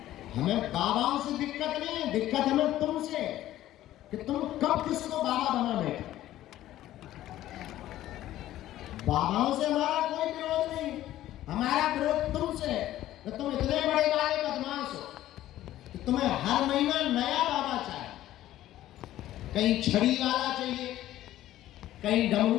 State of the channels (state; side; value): quieter; right; 13.9 dB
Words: हमें बाबाओं से दिक्कत नहीं है, दिक्कत हमें तुमसे, कि तुम कब किसको बाबा बना बैठे। बाबाओं से हमारा कोई विरोध नहीं, हमारा विरोध तुमसे है कि तुम इतने बड़े बड़े बदमाश हो कि तुम्हें हर महीना नया बाबा चाहिए। कहीं छड़ी वाला चाहिए, कहीं